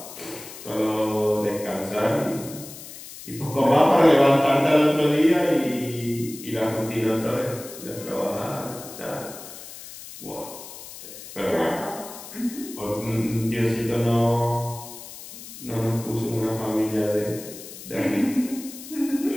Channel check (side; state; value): left; noise; hiss, 14 dB below the sound